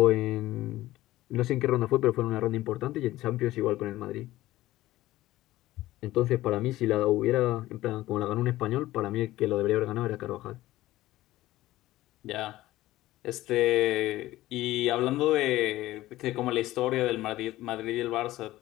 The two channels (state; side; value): quieter; right; 16.3 dB